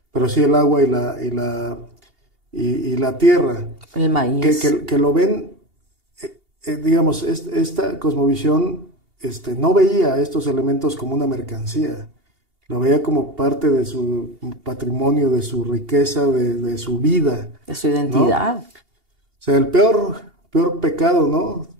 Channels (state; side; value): late; left; 2.8 ms